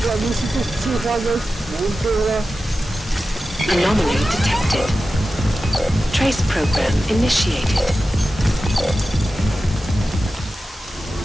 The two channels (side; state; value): both; normal; correlation 0.93